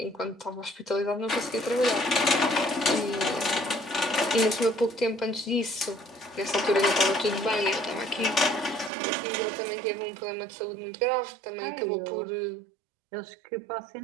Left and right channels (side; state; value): left; drops out; at 8.9 s